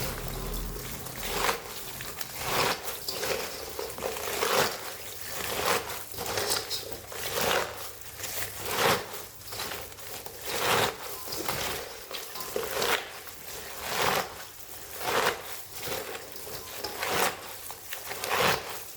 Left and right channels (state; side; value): identical; both; correlation 1.00